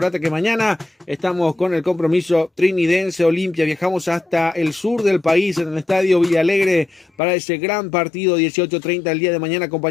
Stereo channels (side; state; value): right; drops out; at 7.1 s